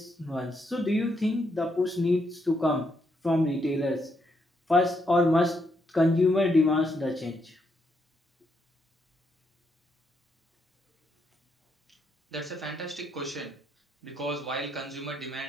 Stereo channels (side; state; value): both; normal; correlation 0.77